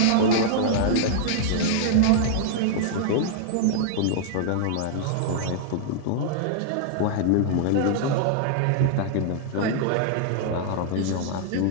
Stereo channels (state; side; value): different; both; correlation -0.01